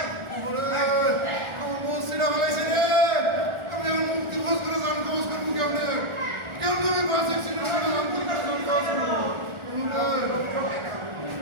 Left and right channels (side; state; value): left; late; 1.4 ms